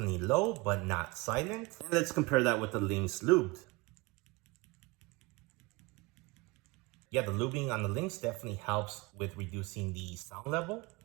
low, but not silent. And let's compare that with the Lynx lubed. Yeah, the lubing on the Lynx definitely helps with reducing the sound level.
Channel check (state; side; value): quieter; left; 24.4 dB